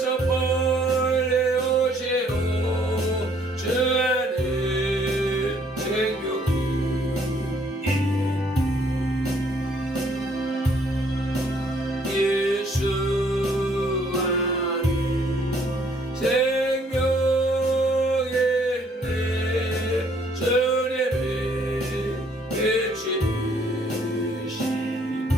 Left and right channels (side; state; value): both; normal; correlation 0.64